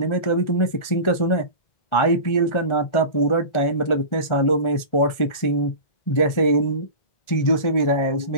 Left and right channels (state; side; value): late; right; 1.4 ms